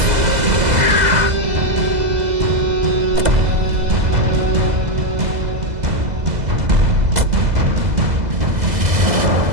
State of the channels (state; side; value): late; left; 2.0 ms